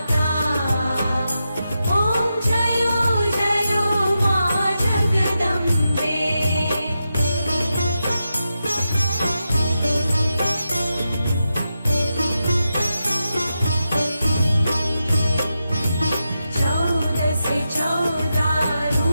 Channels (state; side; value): inverted; both; correlation -0.88